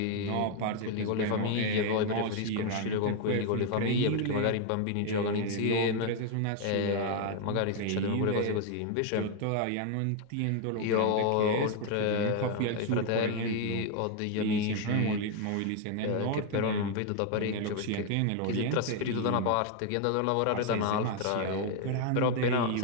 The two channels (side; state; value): both; different; correlation 0.01